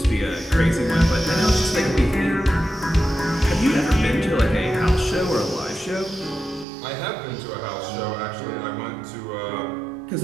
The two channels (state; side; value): drops out; left; at 6.7 s